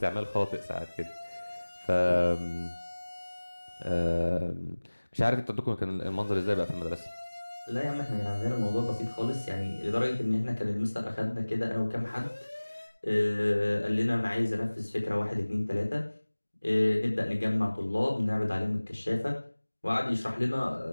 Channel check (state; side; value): inverted; both; correlation -1.00